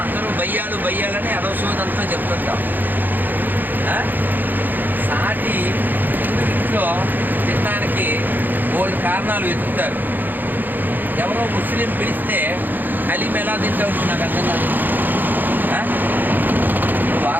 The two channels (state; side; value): late; left; 0.087 ms